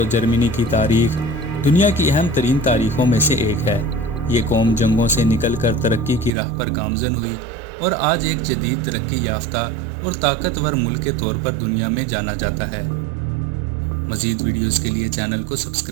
جرمنی کی تاریخ دنیا کی اہم ترین تاریخوں میں سے ایک ہے۔ یہ قوم جنگوں سے نکل کر ترقی کی راہ پر گامزن ہوئی اور آج ایک جدید ترقی یافتہ اور طاقتور ملک کے طور پر دنیا میں جانا جاتا ہے۔ مزید ویڈیوز کے لیے چینل کو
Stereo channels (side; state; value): left; drops out; at 6.3 s